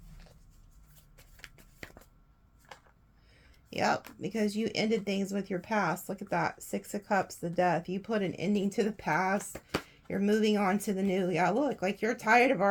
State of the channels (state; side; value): identical; both; correlation 1.00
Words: Yep, because you ended things with your past. Look at that. 6 of Cups, the Death. You put an ending to the past. You're moving on to the new. Yeah, look, like you're tired of